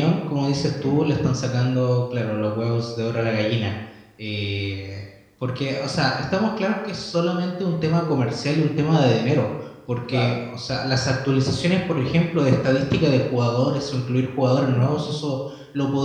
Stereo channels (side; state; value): both; identical; correlation 1.00